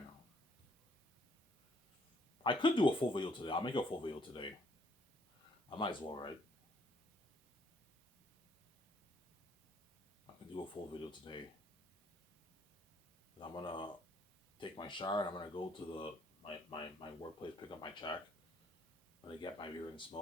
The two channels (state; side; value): normal; both; correlation 0.67